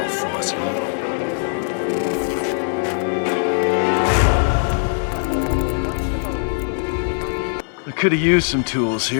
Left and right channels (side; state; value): right; silent; digital silence